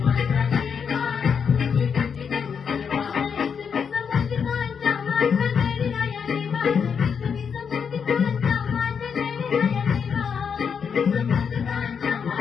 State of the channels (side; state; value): right; quieter; 6.6 dB